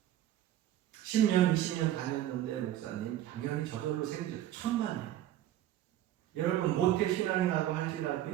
10년, 20년 다녔는데 목사님 당연히 저절로 생기죠. 천만에. 여러분 모태신앙이라고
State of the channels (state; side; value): quieter; left; 12.6 dB